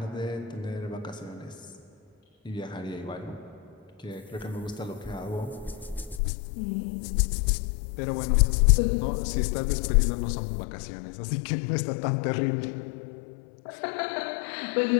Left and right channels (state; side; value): drops out; right; at 6.2 s